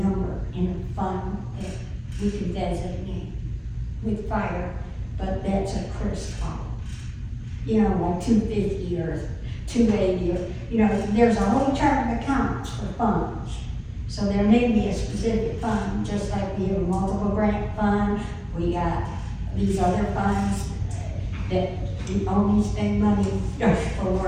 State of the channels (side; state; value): both; identical; correlation 1.00